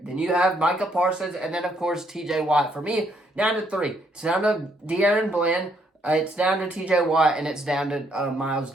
Then you have Micah Parsons, and then, of course, T.J. Watt. For me, down to 3. It's down to De'Aaron Bland, it's down to T.J. Watt, and it's down to Myles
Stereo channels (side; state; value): both; normal; correlation 0.71